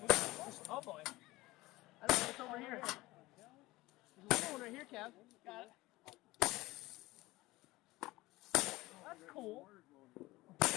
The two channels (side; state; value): right; quieter; 19.4 dB